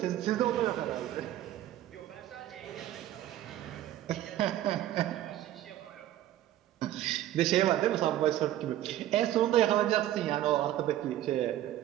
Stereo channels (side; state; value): left; quieter; 13.2 dB